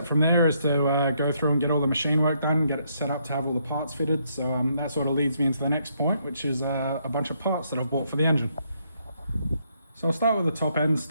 from there is to go through and get all the machine work done, get it set up to have all the parts fitted. So that sort of leads me into the next point, which is a bunch of parts that I've bought for the engine. So I'll start with the top end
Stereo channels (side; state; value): both; inverted; correlation -0.73